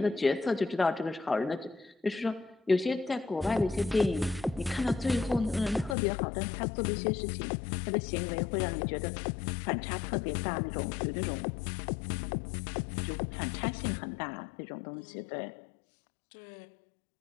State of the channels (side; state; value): right; drops out; at 6.0 s